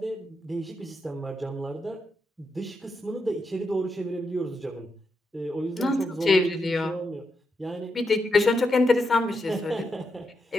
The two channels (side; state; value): both; normal; correlation 0.84